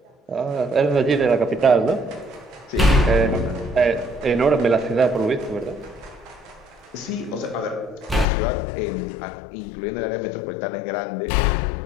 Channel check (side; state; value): right; drops out; at 8.2 s